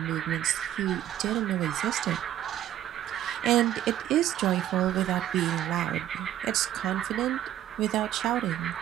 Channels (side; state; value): left; quieter; 12.0 dB